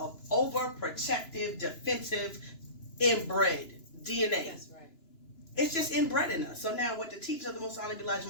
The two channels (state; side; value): late; right; 2.9 ms